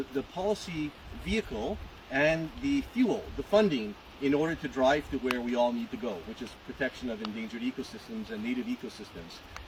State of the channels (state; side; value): identical; both; correlation 1.00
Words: policy vehicle and the fuel, the funding, in order to drive to where we all need to go, which is protection of endangered ecosystems and native ecosystems.